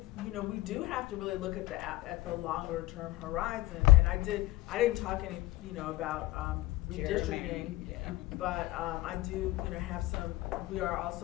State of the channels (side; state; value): right; quieter; 18.5 dB